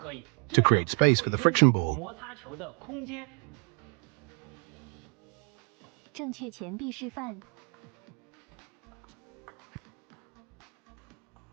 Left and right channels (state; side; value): quieter; left; 40.0 dB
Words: create space for the friction ball.